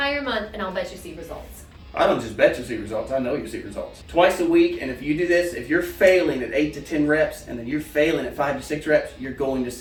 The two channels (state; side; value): identical; both; correlation 1.00